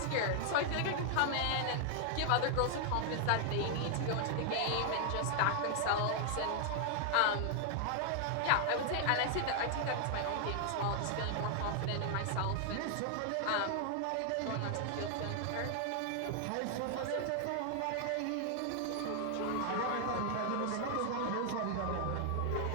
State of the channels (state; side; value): different; both; correlation 0.00